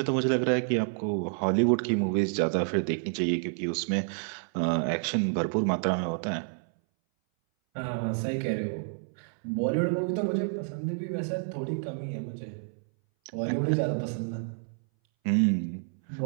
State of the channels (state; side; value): silent; left; 59 dB below the other